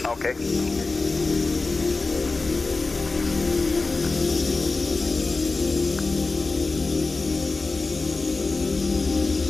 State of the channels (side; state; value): right; quieter; 3.7 dB